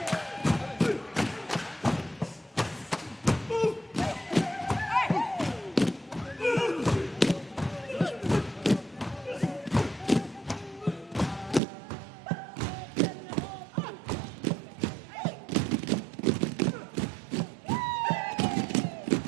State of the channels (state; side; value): drops out; left; at 11.6 s